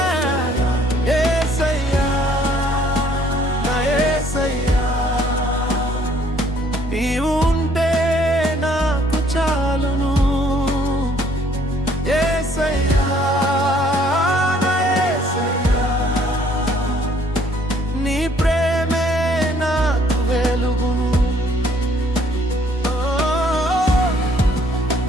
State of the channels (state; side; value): normal; both; correlation 0.62